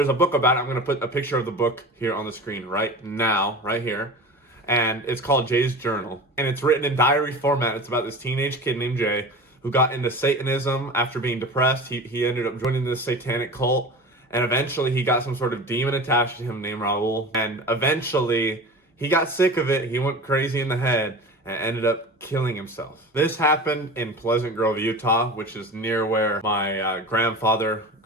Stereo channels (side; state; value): both; normal; correlation 0.33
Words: a book about it. I'm going to put a picture of the book here on the screen right now, right here. And it's called Jay's Journal. And it's written in diary format. It's about this teenage kid named Jay who got into Satanism after being depressed. He ended up joining this satanic cult. And eventually he got some sort of demon attached to him named Raul. And eventually he got sick of it. He went crazy in the head and ended up killing himself. This happened in Pleasant Grove, Utah, which is near where my grandfather